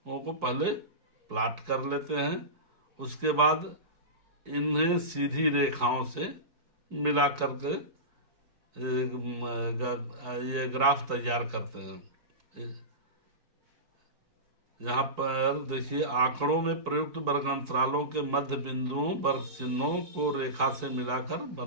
को पहले प्लॉट कर लेते हैं, उसके बाद इन्हें सीधी रेखाओं से मिला करके ये ग्राफ तैयार करते हैं। यहाँ पर देखिए आंकड़ों में प्रयुक्त वर्ग अंतरालों के मध्य बिंदुओं वर्ग चिन्हों को रेखा से मिलाकर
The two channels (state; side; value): late; left; 4.6 ms